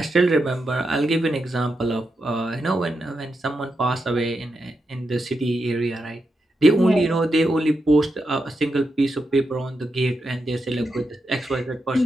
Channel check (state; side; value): normal; both; correlation 0.86